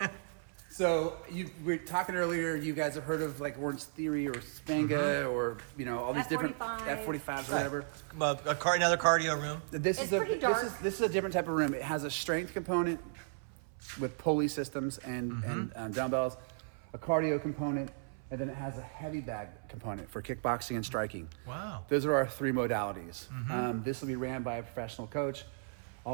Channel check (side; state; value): left; silent; 54 dB below the other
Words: So we were talking earlier. You guys have heard of like Orange Theory or Spanga or all these different F45s. F45s, whatever. Another cardio room. This It's is a pretty dark. This is a different type of room. It has a strength component with pulley systems and dumbbells, a cardio component, and then it has a heavy bag component for kickboxing and striking. Wow. Those are our 3 modalities. This will be ran by a professional coach.